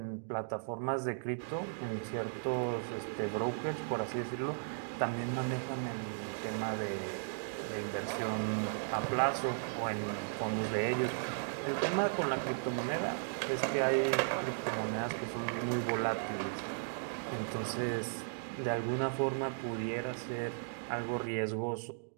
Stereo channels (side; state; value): left; silent; digital silence